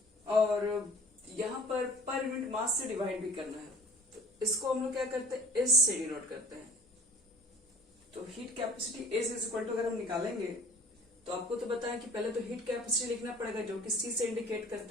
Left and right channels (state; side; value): normal; both; correlation 0.46